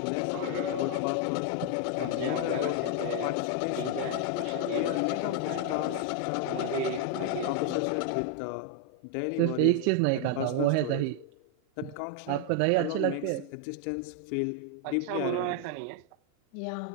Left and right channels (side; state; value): both; different; correlation 0.00